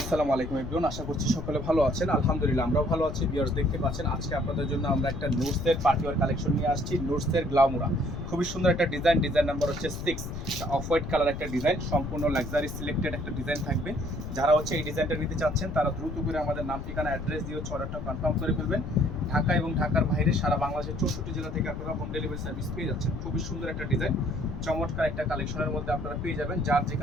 আসসালামু আলাইকুম এভরিওয়ান, আশা করছি সকলে ভালো আছেন। আলহামদুলিল্লাহ আমরাও ভালো আছি। ভিউয়ার্স দেখতে পাচ্ছেন আজকে আপনাদের জন্য আমরা একটা নোটসের পার্টিওয়ার কালেকশন নিয়ে আসছি। নোটসের গ্লামোরা খুবই সুন্দর একটা ডিজাইন নাম্বার হচ্ছে 6, অফ হোয়াইট কালার একটা ডিজাইন, সম্পূর্ণ লাক্সারি সিলেক্টেড একটা ডিজাইন থাকবে। যারা হচ্ছে এই ডিজাইনটা নিতে চাচ্ছেন তারা দ্রুত করে আমাদের নাম ঠিকানা অ্যাড্রেস দিয়ে অর্ডারটা কনফার্ম করে ফেলবেন। ঢাকা এবং ঢাকার বাইরে সারা বাংলাদেশের 64 জেলা থেকে আপনারা হোম ডেলিভারি সার্ভিস পেয়ে যাচ্ছেন। খুবই সুন্দর একটা ডিজাইন, চমৎকার একটা কালেকশনের মধ্যে আপনারা পেয়ে যাবেন। যার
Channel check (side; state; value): left; noise; rumble, 7 dB below the sound